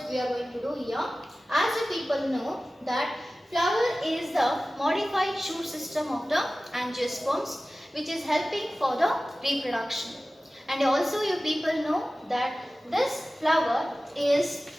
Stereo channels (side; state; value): both; normal; correlation 0.96